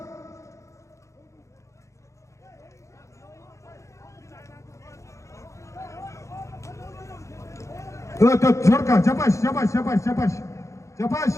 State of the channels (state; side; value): late; right; 0.15 ms